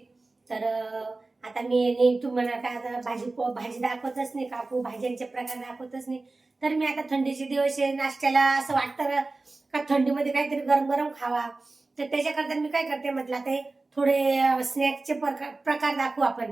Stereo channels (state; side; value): quieter; left; 3.4 dB